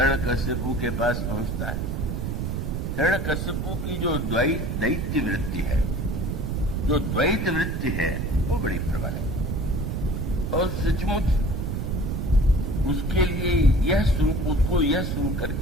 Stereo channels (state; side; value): noise; right; rumble, 2 dB below the sound